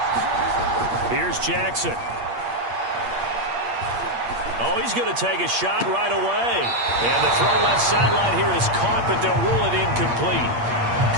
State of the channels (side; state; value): left; late; 8.6 ms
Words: Here's Jackson. Oh, he's going to take a shot right away. And the throw left sideline here is caught, but they'll rule it incomplete.